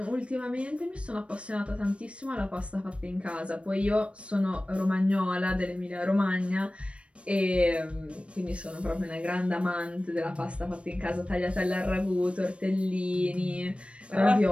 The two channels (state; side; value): late; left; 0.061 ms